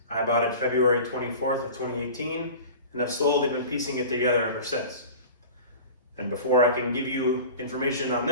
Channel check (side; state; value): both; inverted; correlation -0.38